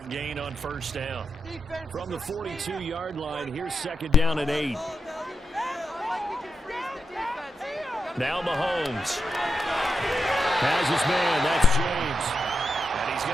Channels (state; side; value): normal; both; correlation 0.87